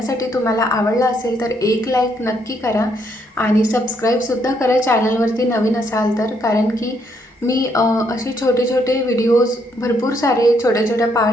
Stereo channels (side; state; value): both; normal; correlation 0.72